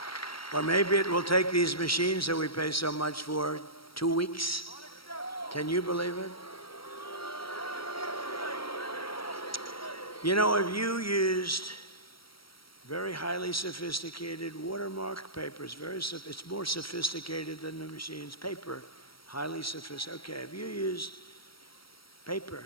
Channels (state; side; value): late; right; 0.75 ms